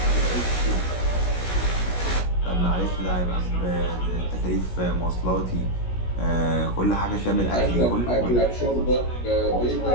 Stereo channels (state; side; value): late; right; 16 ms